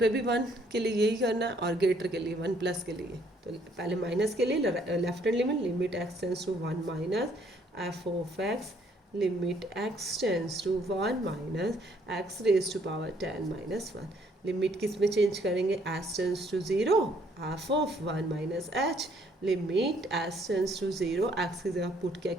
भी 1 के लिए यही करना है, और ग्रेटर के लिए 1 प्लस के लिए. तो पहले माइनस के लिए left hand limit, limit x tends to 1 minus f of x, limit x tends to 1 minus x raise to power 10 minus 1. Limit किस में चेंज करेंगे, h tends to 0, f of 1 minus h, limit h tends to 0, x की जगह put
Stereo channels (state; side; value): normal; both; correlation 0.65